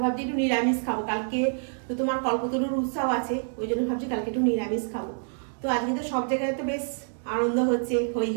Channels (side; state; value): left; silent; digital silence